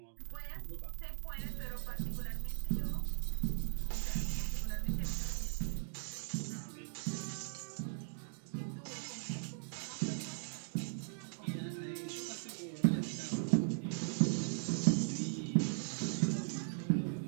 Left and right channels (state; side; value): silent; left; digital silence